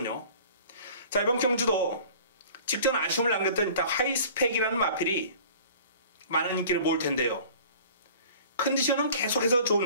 자, 이번 경주도 직전 아쉬움을 남겼던 하이스펙이라는 마필이 많은 인기를 모을 텐데요. 컨디션은 계속해서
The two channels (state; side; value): inverted; both; correlation -0.46